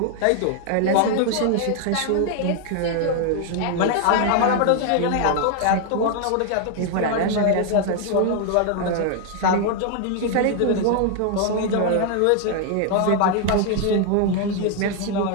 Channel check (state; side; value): different; both; correlation 0.00